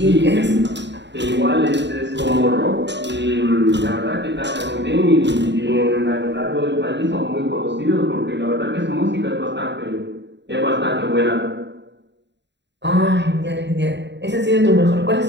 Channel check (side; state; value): left; late; 0.52 ms